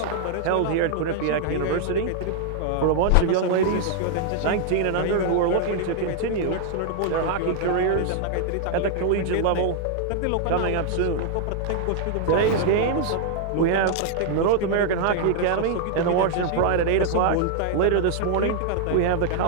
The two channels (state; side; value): different; both; correlation 0.00